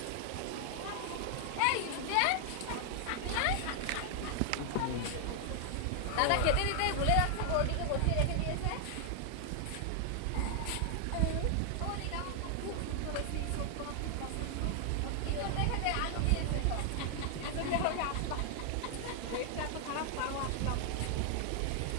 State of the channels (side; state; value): both; different; correlation 0.00